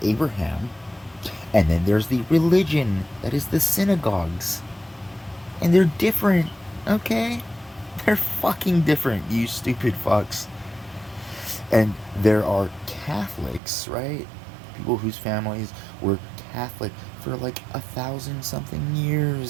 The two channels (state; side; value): drops out; left; at 13.6 s